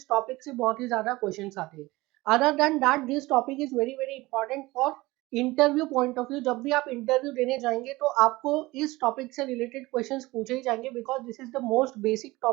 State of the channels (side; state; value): left; quieter; 20.4 dB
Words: topic से बहुत ही ज़्यादा questions आते हैं. Other than that this topic is very important for interview point of view. जब भी आप interview देने जाएंगे तो आपको इस टॉपिक से रिलेटेड क्वेश्चंस पूछे ही जाएंगे because this is the most basic